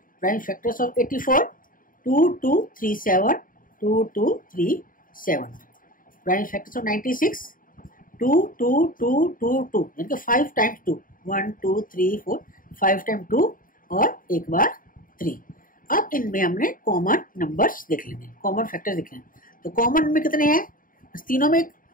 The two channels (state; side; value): late; right; 0.40 ms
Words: Prime factors of 84, 2 2 3 7, 2 2 3 7। Prime factors of 96, 2 2 2 2 2, यानी कि 5 टाइम्स 2, 1 2 3 4, 5 टाइम्स 2 और एक बार 3। अब इनमें हमने कॉमन नंबर्स देख लेंगे, कॉमन फैक्टर देख लेंगे। तो कॉमन में कितने हैं, तीनों में